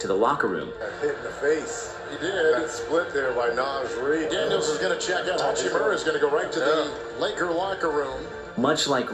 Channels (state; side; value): identical; both; correlation 1.00